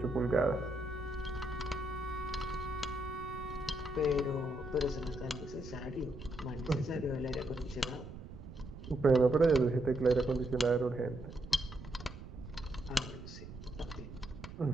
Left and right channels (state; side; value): noise; right; rumble, 12 dB below the sound